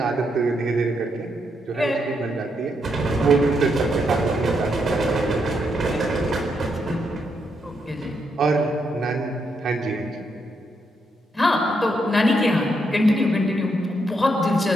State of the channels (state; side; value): normal; both; correlation 0.79